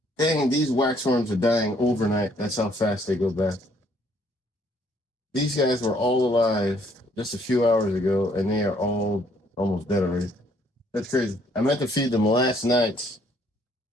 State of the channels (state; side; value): normal; both; correlation 0.65